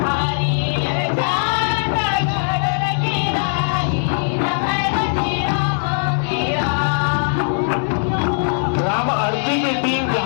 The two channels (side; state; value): right; silent; 61 dB below the other